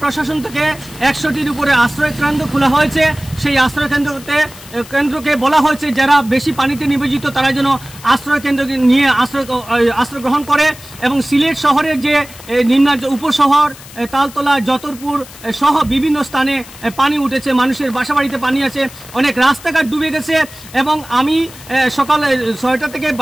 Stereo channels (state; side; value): noise; left; hiss, 18 dB below the sound